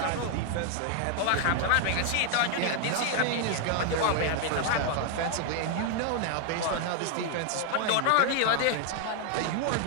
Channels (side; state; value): both; different; correlation 0.00